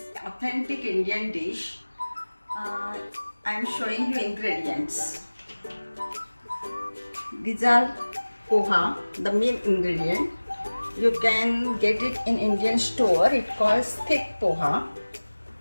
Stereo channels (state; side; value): inverted; both; correlation -1.00